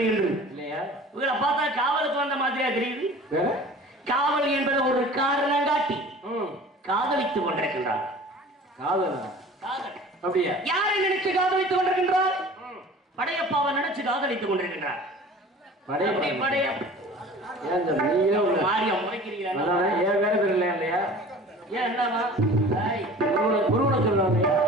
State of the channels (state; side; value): normal; both; correlation 0.43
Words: என்று இல்லையா? இவங்களை பார்த்தா காவலுக்கு வந்த மாதிரியா தெரியுது. காவல் என்பது ஒரு காரணம் காட்டி காதலித்துக் கொண்டிருக்கின்றார். காதல் அப்படியா? யாரை நினைச்சு காதலித்துக் கொண்டிருக்கின்றார்? படையப்பாவை நினைச்சு காதலித்துக் கொண்டிருக்கின்றார்.